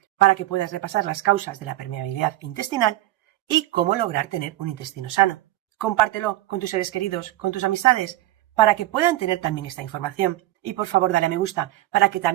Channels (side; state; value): left; quieter; 15.8 dB